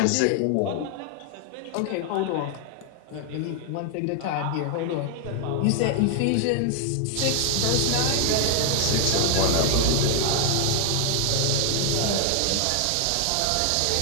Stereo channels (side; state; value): both; different; correlation 0.00